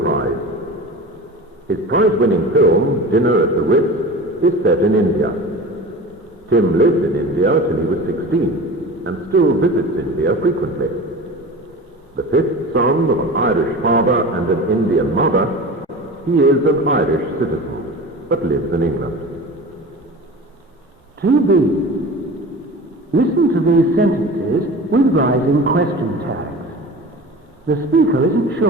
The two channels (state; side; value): normal; both; correlation 0.34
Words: Prize. His prize-winning film, Dinner at the Ritz, is set in India. Tim lived in India till he was 16 and still visits India frequently. The fifth son of an Irish father and an Indian mother, he is an Irish citizen, but lives in England. 2B. Listen to these sentences with rising question tags. The speaker isn't